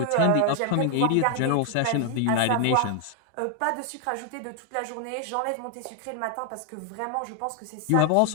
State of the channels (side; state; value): both; different; correlation 0.00